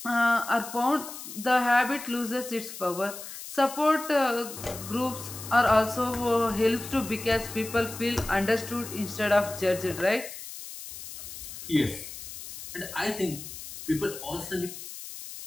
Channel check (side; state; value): left; noise; hiss, 11 dB below the sound